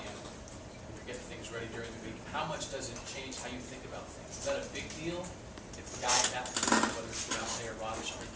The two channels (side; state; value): both; identical; correlation 1.00